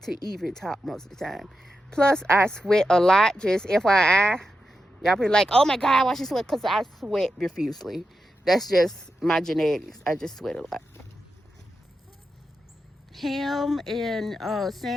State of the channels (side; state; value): both; normal; correlation 0.88